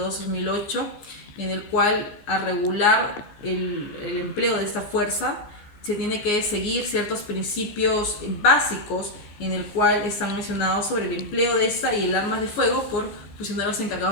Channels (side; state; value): right; late; 14 ms